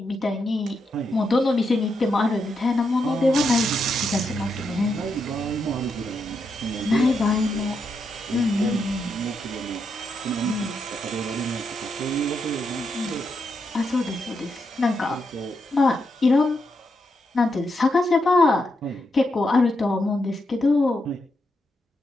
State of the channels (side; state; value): both; normal; correlation 0.82